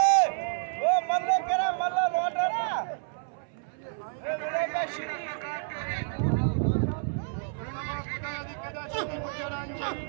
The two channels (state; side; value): silent; left; 58 dB below the other